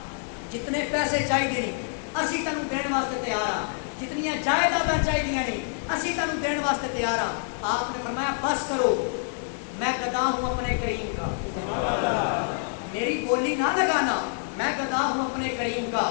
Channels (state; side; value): silent; right; digital silence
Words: جتنے پیسے چاہیے نہیں اسی تینوں دین واسطے تیار ہاں, جتنی جائیداداں چاہیے نہیں اسی تینوں دین واسطے تیار ہاں. آپ نے فرمایا بس کرو, میں گدا ہوں اپنے کریم کا, میری بولی نہ لگانا, میں گدا ہوں اپنے کریم کا,